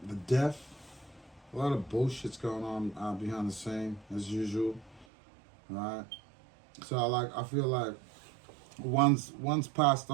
death. A lot of bullshit's going on behind the scene, as usual. Alright. So, I feel like one's passed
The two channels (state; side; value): drops out; left; at 5.1 s